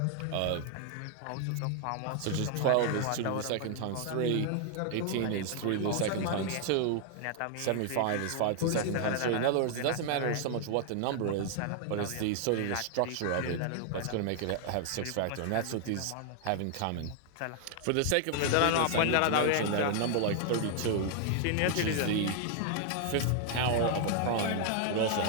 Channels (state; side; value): different; both; correlation 0.00